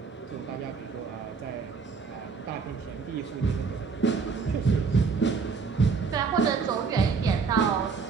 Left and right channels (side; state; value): left; quieter; 5.2 dB